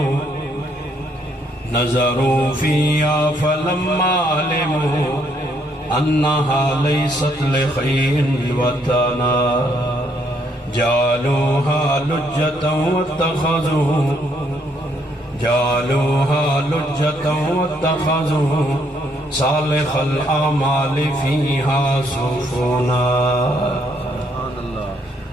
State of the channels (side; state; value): both; normal; correlation 0.71